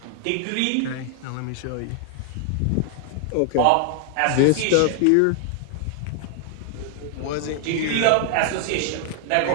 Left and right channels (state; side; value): different; both; correlation 0.00